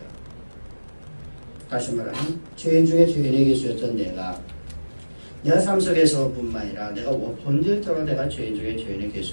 다시 말하면 죄인 중에 죄인이 계셨던 내가 삶 속에서뿐만 아니라 내가 본질적으로 내가 죄인 중에 죄인이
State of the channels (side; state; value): both; inverted; correlation -1.00